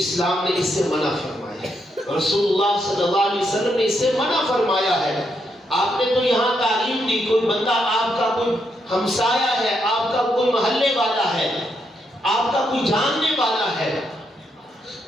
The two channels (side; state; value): both; normal; correlation 0.79